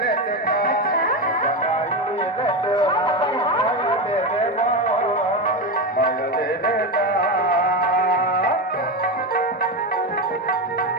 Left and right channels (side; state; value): both; normal; correlation 0.15